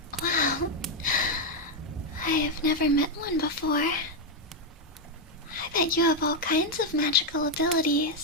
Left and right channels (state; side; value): normal; both; correlation 0.02